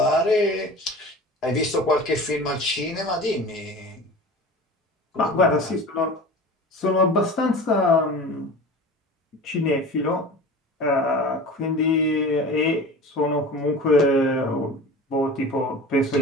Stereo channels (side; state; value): both; normal; correlation 0.36